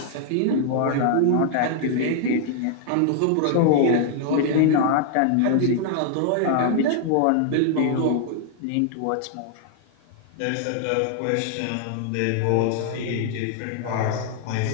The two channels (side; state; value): both; different; correlation -0.01